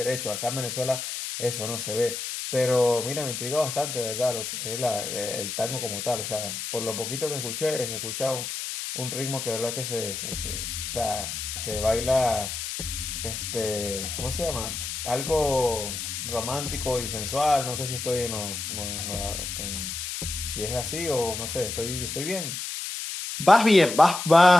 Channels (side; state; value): left; noise; hiss, 5 dB below the sound